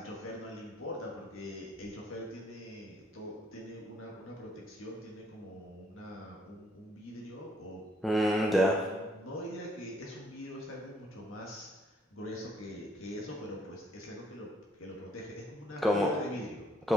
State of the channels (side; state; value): both; normal; correlation 0.66